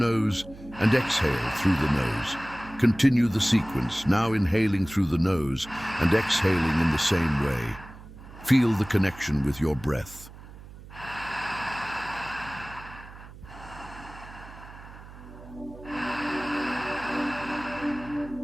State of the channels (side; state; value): right; noise; hum, 17 dB below the sound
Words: and exhale through the nose. Continue the sequence, now inhaling through the nose and exhaling in the same way. Feel the connection with your breath.